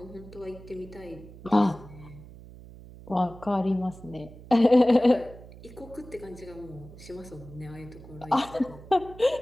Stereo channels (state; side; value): noise; right; hum, 18 dB below the sound